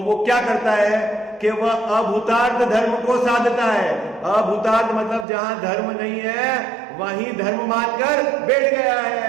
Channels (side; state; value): left; drops out; at 5.2 s